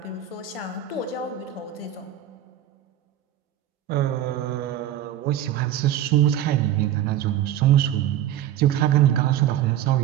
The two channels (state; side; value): quieter; left; 11.3 dB